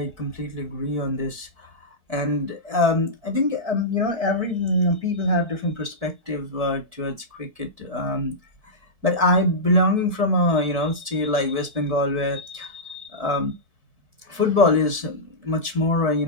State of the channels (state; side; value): late; left; 4.6 ms